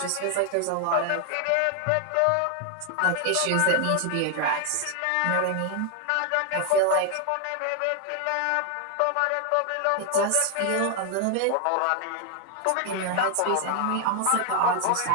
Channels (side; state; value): both; different; correlation 0.00